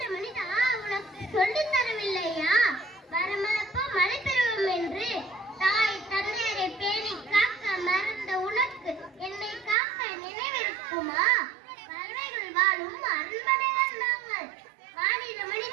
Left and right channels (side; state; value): left; drops out; at 9.8 s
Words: மனிதா உனக்கு சொல்லி தரவில்லையா? வரமளப்போ மழை பெறுவோம் என்று தாய் தந்தையரை பேணி காக்க மறந்த உனக்கு என்னை காக்க நினைவிருக்குமா? பறவைகள் வாழும் அரண்மனைகள் நாங்கள். மாநில